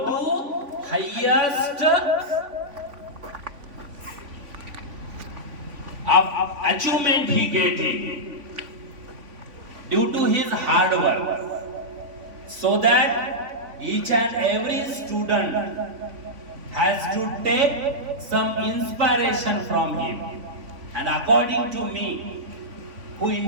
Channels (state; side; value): late; left; 3.5 ms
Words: to highest achievement he getting due to his hard work, so that each and every student has to take some inspiration from him. And according to me, who